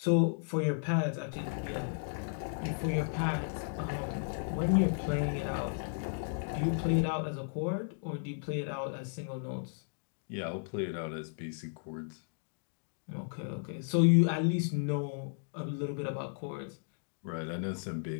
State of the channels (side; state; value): right; silent; digital silence